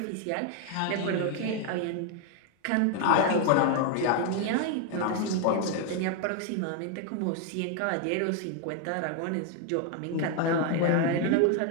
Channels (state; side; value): different; both; correlation 0.01